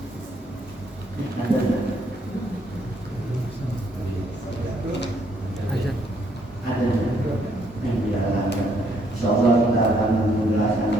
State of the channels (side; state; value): both; normal; correlation 0.70